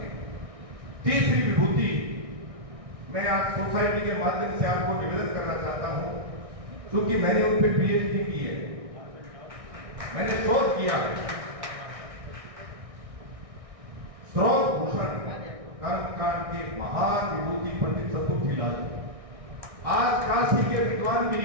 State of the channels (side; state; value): left; late; 1.6 ms